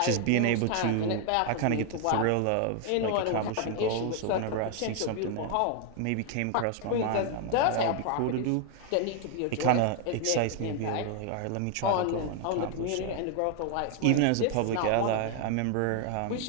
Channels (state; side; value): different; both; correlation 0.00